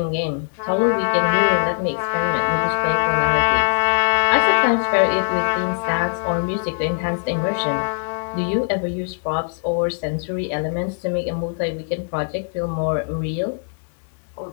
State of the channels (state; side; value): silent; right; digital silence